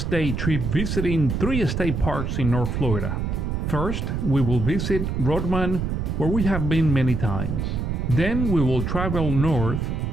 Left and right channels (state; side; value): noise; right; rumble, 1 dB below the sound